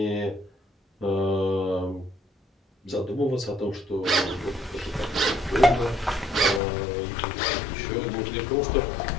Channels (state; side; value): drops out; right; at 6.6 s